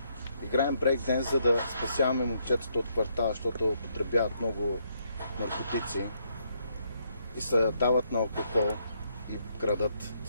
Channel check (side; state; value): both; inverted; correlation -0.74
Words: Играем брейкденс, за да спасяваме момчетата от квартала, защото употребяват много наркотици и се дават на алкохол и крадат.